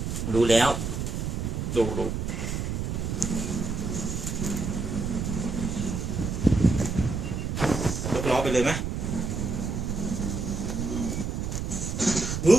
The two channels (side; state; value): right; noise; rumble, 2 dB below the sound